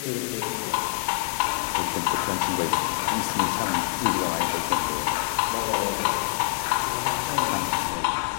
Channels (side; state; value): right; quieter; 25.7 dB